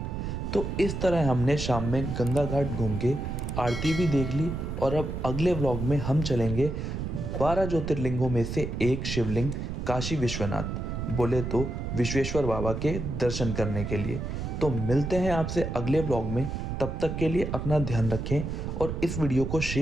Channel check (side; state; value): right; noise; rumble, 4 dB below the sound